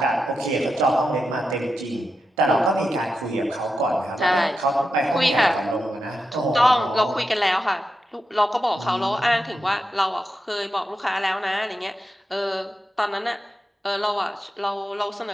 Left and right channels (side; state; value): both; normal; correlation 0.88